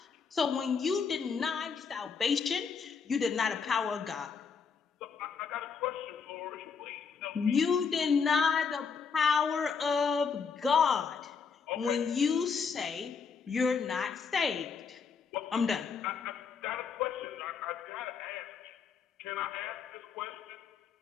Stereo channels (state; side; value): quieter; right; 5.8 dB